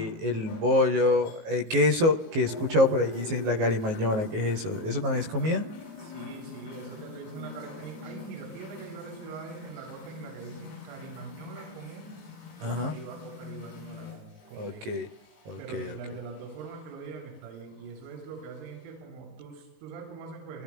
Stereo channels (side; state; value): left; late; 19 ms